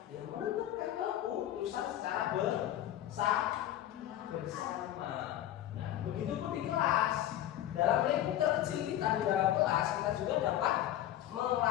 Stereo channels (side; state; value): right; quieter; 12.5 dB